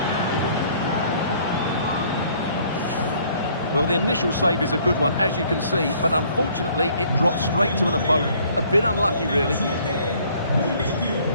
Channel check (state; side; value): inverted; both; correlation -0.60